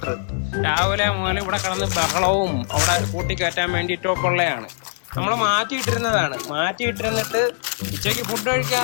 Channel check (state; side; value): silent; right; digital silence